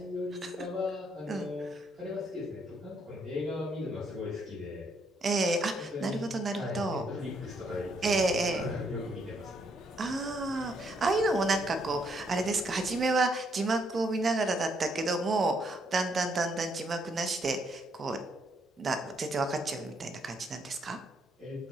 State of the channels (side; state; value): both; normal; correlation 0.73